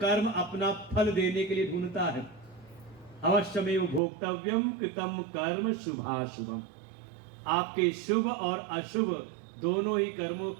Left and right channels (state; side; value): drops out; left; at 4.0 s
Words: अपना फल देने के लिए ढूंढता है। अवश्यमेव भोक्तव्यम कृतम कर्म शुभाशुभम। आपके शुभ और अशुभ दोनों ही कर्मों